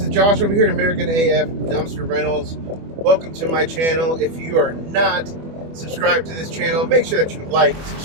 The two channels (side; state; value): left; late; 24 ms